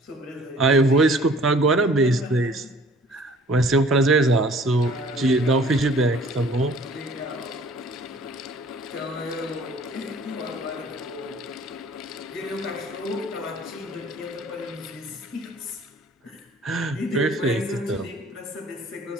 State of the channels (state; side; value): normal; both; correlation 0.52